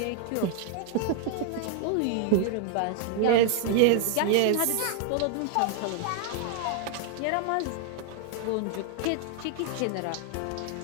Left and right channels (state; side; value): different; both; correlation 0.00